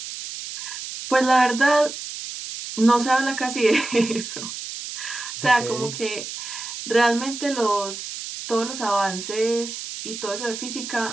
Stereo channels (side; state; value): right; noise; hiss, 8 dB below the sound